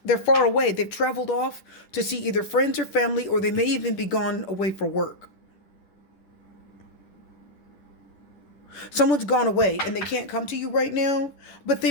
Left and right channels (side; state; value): right; late; 10 ms